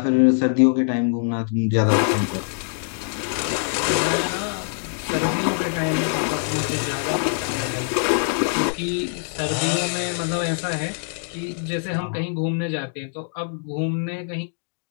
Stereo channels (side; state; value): right; silent; digital silence